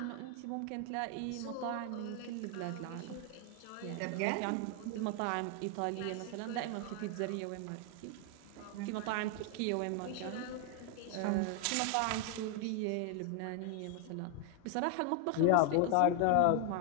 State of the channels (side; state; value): both; different; correlation 0.00